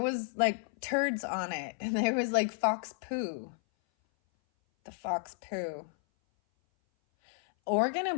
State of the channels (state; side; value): silent; right; 56 dB below the other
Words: like turds on it, and there was like fox poo. The fox poo. Oregon